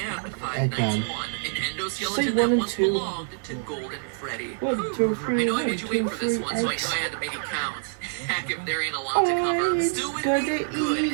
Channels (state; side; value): silent; left; 61 dB below the other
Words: Five Nights 1. Eggman. An Say endoskeleton 1 that and once 2. belonged to Golden Freddy. 1, 2, I 3, know I 1, made you 2, wait for this 3, one, so I X. had to make it count. Heck, if there ain't a lot to cover. Still with gonna me? Good,